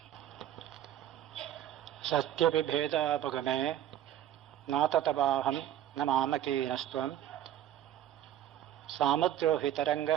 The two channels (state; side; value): quieter; left; 11.7 dB